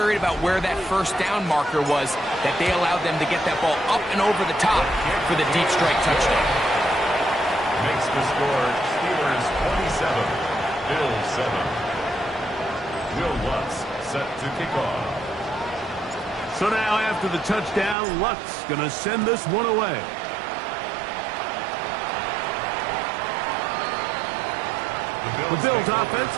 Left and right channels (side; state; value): left; drops out; at 17.9 s